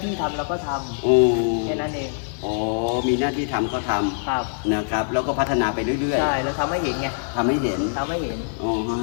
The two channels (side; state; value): right; silent; 58 dB below the other